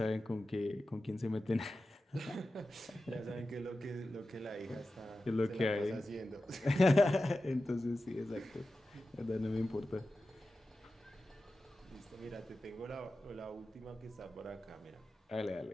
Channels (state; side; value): normal; both; correlation 0.93